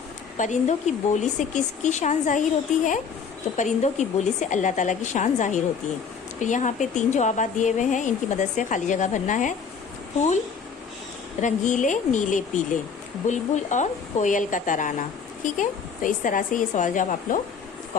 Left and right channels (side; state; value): right; quieter; 6.1 dB